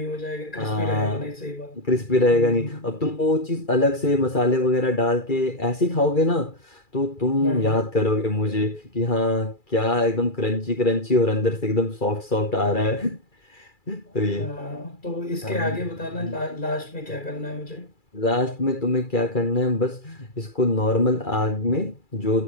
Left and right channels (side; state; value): right; late; 2.3 ms